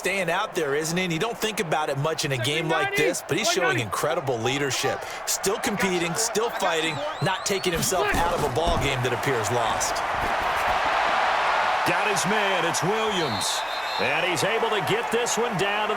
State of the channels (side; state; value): both; identical; correlation 1.00